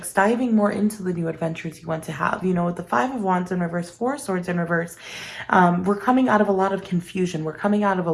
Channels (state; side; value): identical; both; correlation 1.00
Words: diving more into the new adventures you want to have. With the Five of Wands in reverse, Four of Swords in reverse, we're coming out of a lot of confusion. We're coming out of a